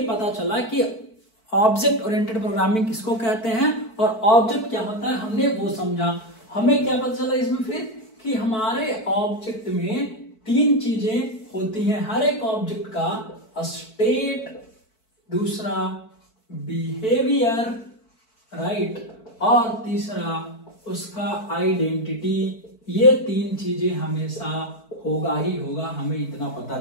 पता चला कि ऑब्जेक्ट ओरिएंटेड प्रोग्रामिंग किसको कहते हैं और ऑब्जेक्ट क्या होता है, हमने वो समझा। हमें क्या पता चला इसमें फिर कि हमारे ऑब्जेक्ट में 3 चीजें होती हैं। हर एक ऑब्जेक्ट का स्टेट, दूसरा बिहेवियर, राइट, और तीसरा उसका आइडेंटिटी। ये 3 चीजें हमेशा होगा ही होगा, हमें इतना पता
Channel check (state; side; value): late; right; 4.5 ms